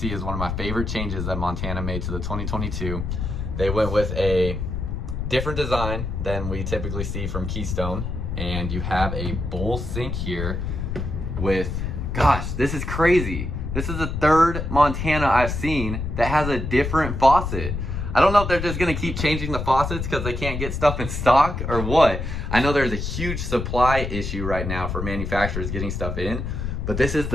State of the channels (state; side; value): noise; left; rumble, 4 dB below the sound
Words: is one of my favorite changes that Montana made to the 2022. They went with a different design than we typically see from Keystone, and you have a bowl sink here with, gosh, this is crazy. This is the 3rd Montana I've seen that has a different faucet. I don't know if they're just gonna keep changing the faucets because they can't get stuff in stock or what. I know there's a huge supply issue right now for manufacturers getting stuff in, but this is